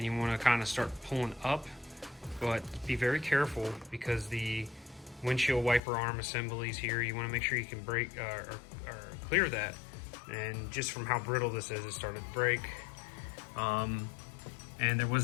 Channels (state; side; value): drops out; right; at 5.8 s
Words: you wanna kind of start pulling up, but be very careful because the windshield wiper arm assemblies here, you wanna make sure you can break or clear that. And just from how brittle this is, it started to break. And there